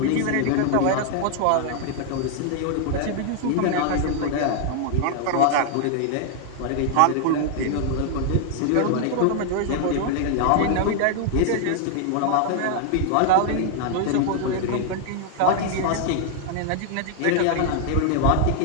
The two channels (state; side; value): different; both; correlation 0.00